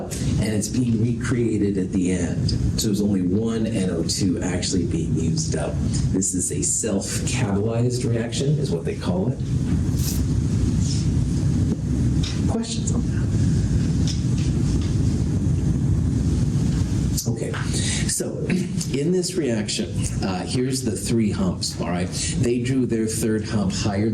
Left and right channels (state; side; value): identical; both; correlation 1.00